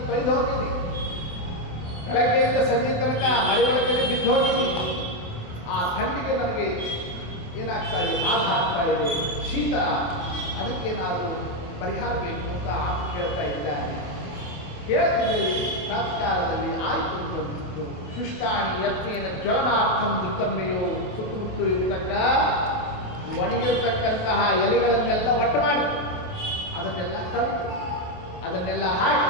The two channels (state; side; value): late; right; 28 ms